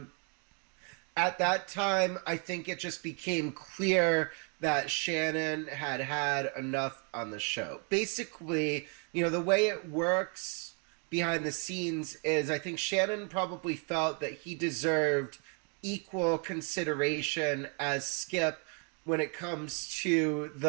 at that time, I think it just became clear that Shannon had had enough on the show. Basically, you know, the way it works behind the scenes is I think Shannon probably felt that he deserved equal consideration as Skip when it comes to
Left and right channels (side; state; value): left; quieter; 38.2 dB